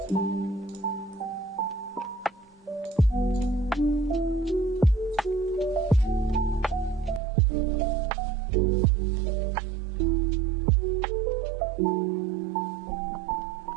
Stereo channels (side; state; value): left; drops out; at 7.2 s